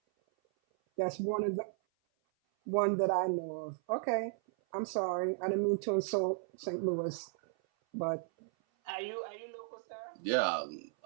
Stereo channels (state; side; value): silent; left; 54 dB below the other